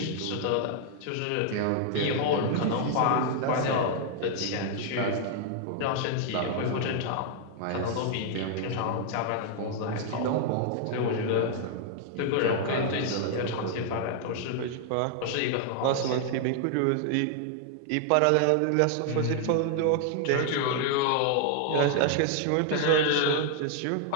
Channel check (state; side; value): different; both; correlation 0.00